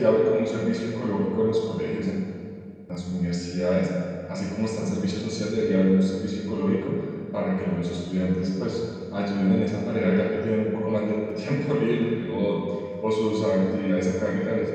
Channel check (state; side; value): identical; both; correlation 1.00